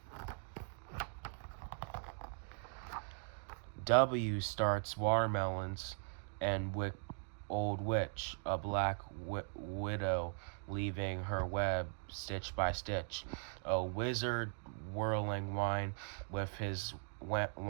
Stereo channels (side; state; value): left; silent; 51 dB below the other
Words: W starts watermelons and old witch, a black widow leaving her web stitch by stitch. A wizard whirling wine with his